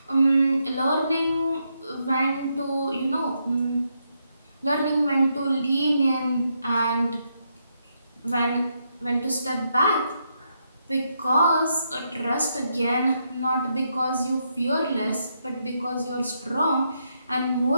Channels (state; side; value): inverted; both; correlation -0.80